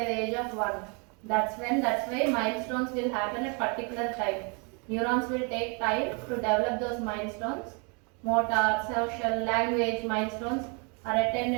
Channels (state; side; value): quieter; left; 34.3 dB